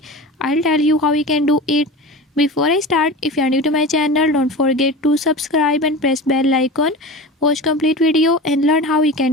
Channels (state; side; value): normal; both; correlation 0.31